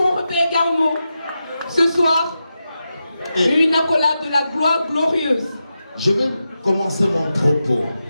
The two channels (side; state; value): both; inverted; correlation -0.89